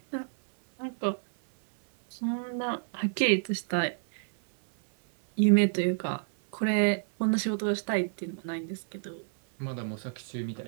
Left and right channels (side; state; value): left; silent; 57 dB below the other